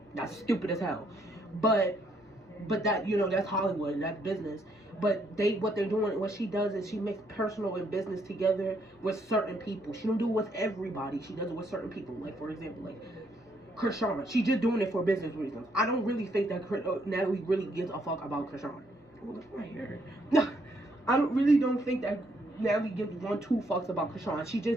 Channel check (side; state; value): both; normal; correlation 0.71